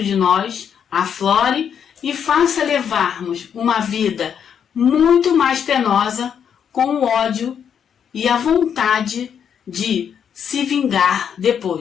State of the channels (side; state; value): right; quieter; 8.0 dB